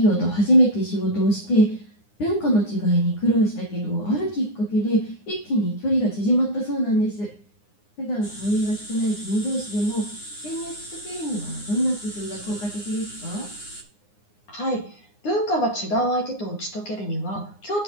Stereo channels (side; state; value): right; late; 9.7 ms